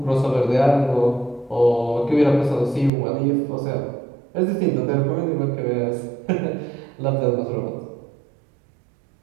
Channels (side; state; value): left; drops out; at 2.9 s